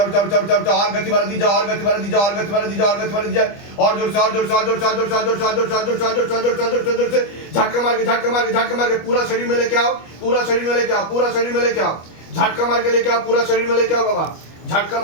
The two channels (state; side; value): late; right; 25 ms